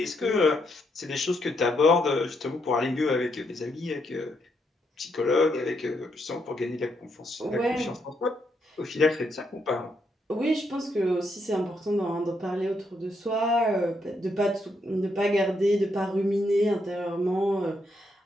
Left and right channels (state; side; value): normal; both; correlation 0.78